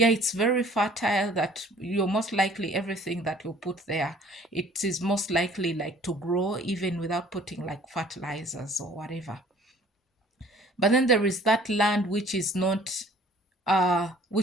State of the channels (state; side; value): normal; both; correlation 0.53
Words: it's very fertile, that you're most likely everything that you put there, it is most likely like to grow even without putting like fertilizers or whatever. But then there is that land which is not